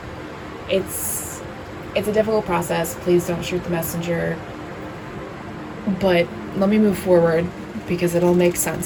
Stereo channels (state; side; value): identical; both; correlation 1.00